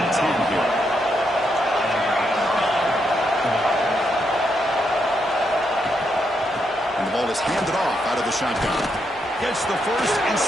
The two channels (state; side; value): normal; both; correlation 0.80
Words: 10 here. And the ball is handed off out of the shotgun. Gets the first and